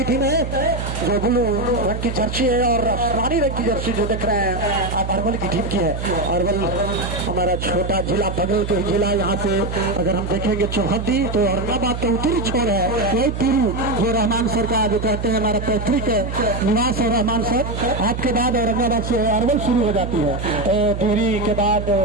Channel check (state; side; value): noise; right; hum, 5 dB below the sound